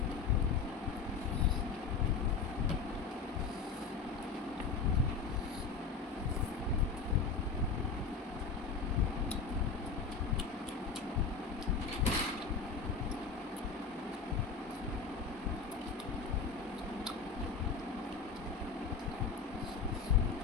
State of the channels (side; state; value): right; quieter; 5.0 dB